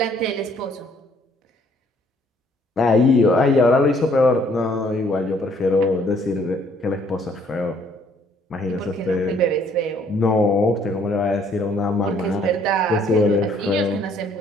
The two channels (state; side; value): normal; both; correlation 0.63